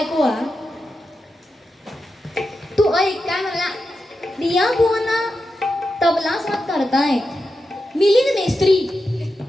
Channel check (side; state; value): both; normal; correlation 0.89